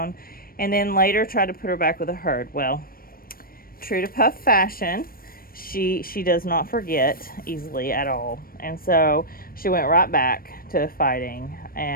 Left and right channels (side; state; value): right; late; 0.43 ms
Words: and then later tried to put her back with a herd. Well, true to Puff fashion, she does not forget easily at all, and so she went right back to fighting.